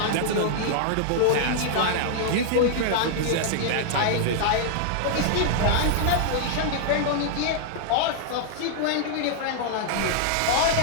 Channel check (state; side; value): different; both; correlation -0.01